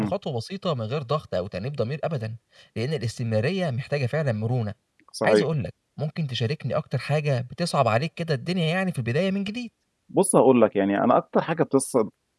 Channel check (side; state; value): both; identical; correlation 1.00